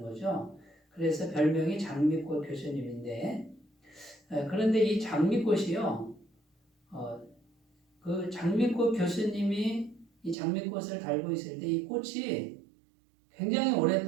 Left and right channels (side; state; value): left; drops out; at 10.4 s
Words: 거죠. 그래서 별명이 장미꽃 교수님인데 그런데 이 장미꽃이요. 그 장미꽃 교수님이 이 장미꽃을 달고 있을 때 이 꽃이 굉장히